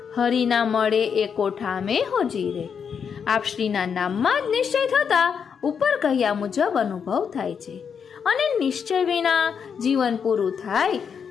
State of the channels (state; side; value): quieter; right; 6.9 dB